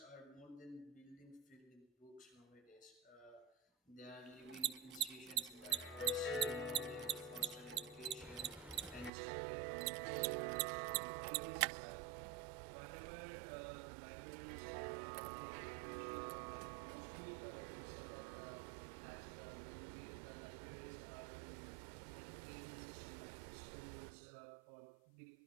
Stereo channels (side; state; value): left; drops out; at 9.1 s